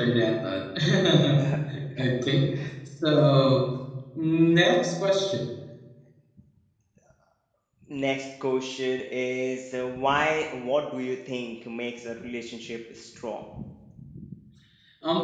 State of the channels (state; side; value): identical; both; correlation 1.00